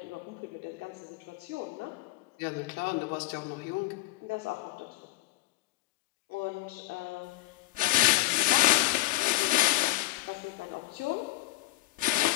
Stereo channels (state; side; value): quieter; right; 18.3 dB